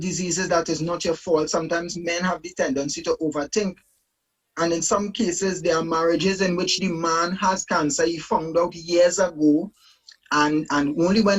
that is not your fault. Sometimes men have the tendency to overthink. And in some cases, there are marriages in which the man has cancer. He found out years ago, and only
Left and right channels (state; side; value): identical; both; correlation 1.00